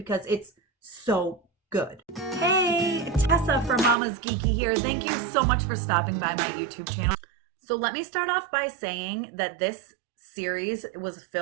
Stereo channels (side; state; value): left; drops out; at 4.0 s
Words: it's so good. Hey, Tessa from Mama's Geeky here. Thank you so much for stopping by my YouTube channel. So let me start off by saying that this series was